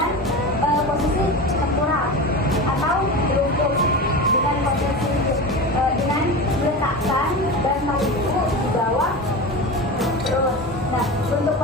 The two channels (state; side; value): normal; both; correlation 0.27